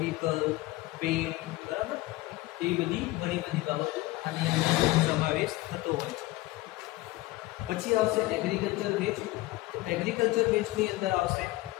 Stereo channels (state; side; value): quieter; right; 19.3 dB